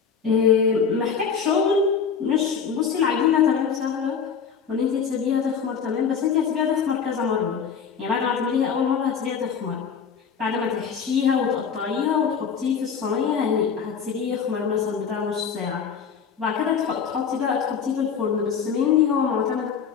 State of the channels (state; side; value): quieter; right; 6.6 dB